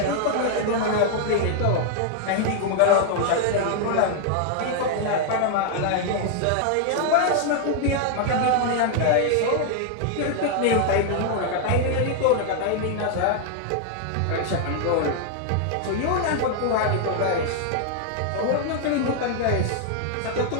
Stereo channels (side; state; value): both; different; correlation 0.00